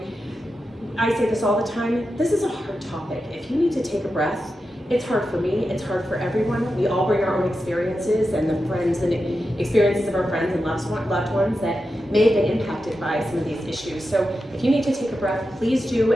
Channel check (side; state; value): both; normal; correlation 0.90